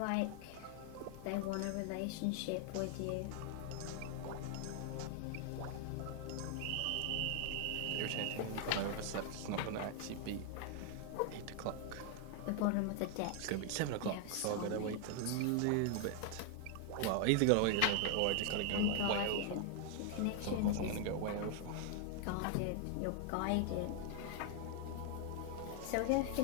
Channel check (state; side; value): different; both; correlation 0.00